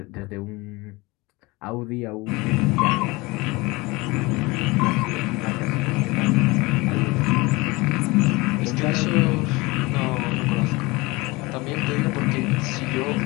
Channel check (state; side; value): quieter; right; 23.4 dB